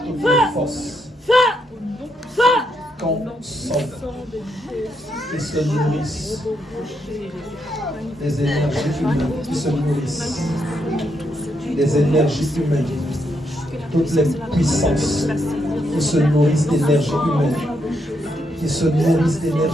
toutes les forces consomme qui se nourrissent des énergies humaines, qui se nourrissent des énergies humaines, toutes les puissances qui se nourrissent d'énergie humaine, qui se nourrissent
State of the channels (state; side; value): normal; both; correlation 0.78